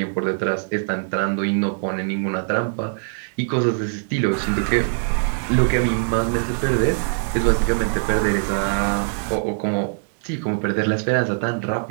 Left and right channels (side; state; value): left; silent; 60 dB below the other